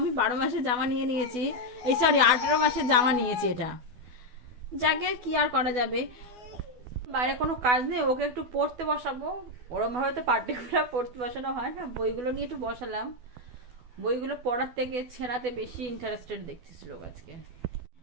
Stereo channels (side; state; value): left; late; 12 ms